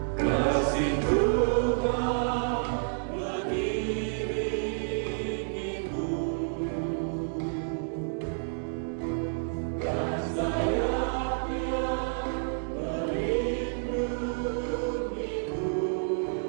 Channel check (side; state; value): left; silent; digital silence